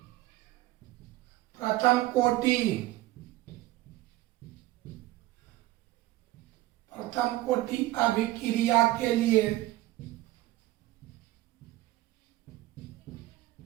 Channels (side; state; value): left; quieter; 17.3 dB